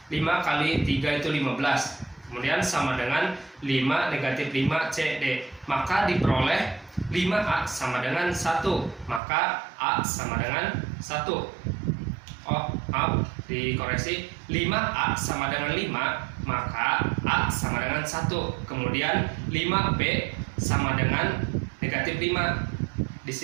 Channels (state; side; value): drops out; left; at 9.2 s